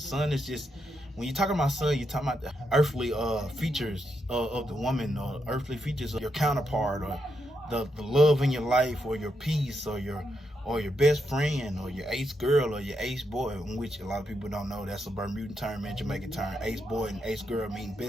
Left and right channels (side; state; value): both; normal; correlation 0.82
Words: is just, when you're talking about Sun, you're talking about the earthly features of the woman, or earthly features of your counterpart, or the love in your life, or your peace, or your best friend, or your ace girl, or your ace boy, in which a lot of people don't know that's a Bermudan term and Jamaican term. Ace boy and ace girl mean